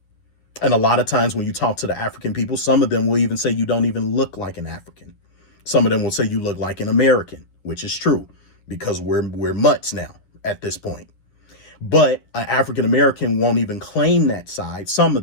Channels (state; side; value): late; right; 9.5 ms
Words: And a lot of times when you talk to the African people, some of them will even say you don't even look like an African. Some of them will say you look like an American, which is true because we're mutts now at this point. But an African American won't even claim that side. Some